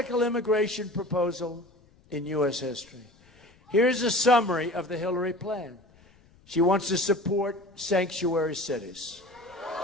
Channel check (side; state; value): left; noise; rumble, 29 dB below the sound